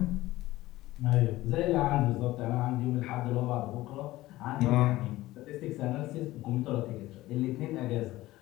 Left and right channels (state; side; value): quieter; right; 17.2 dB